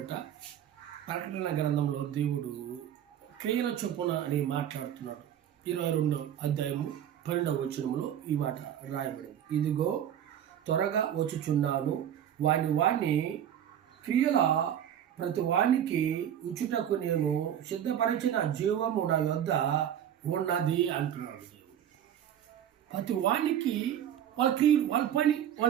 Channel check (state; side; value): quieter; left; 10.1 dB